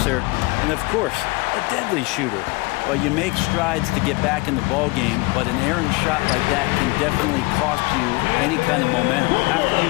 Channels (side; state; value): right; quieter; 24.8 dB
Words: and of course, a deadly shooter. Well, you make strides to get back in the ball game, but an errant shot like that can definitely cost you any kind of momentum. You have to